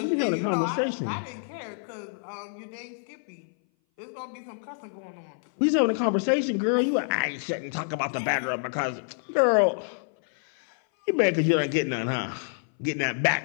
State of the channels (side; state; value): right; silent; 58 dB below the other